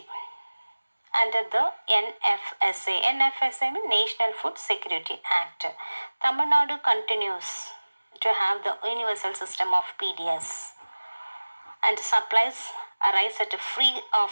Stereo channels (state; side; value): inverted; both; correlation -1.00